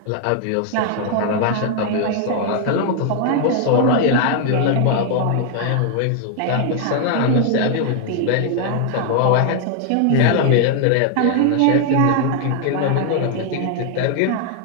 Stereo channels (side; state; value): both; different; correlation 0.00